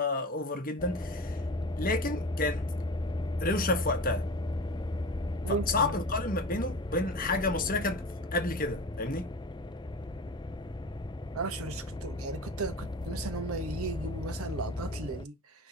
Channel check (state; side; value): normal; both; correlation 0.32